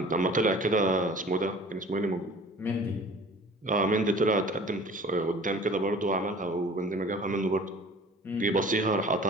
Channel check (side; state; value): both; normal; correlation 0.46